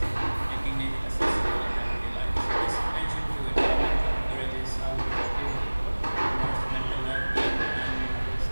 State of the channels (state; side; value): inverted; both; correlation -1.00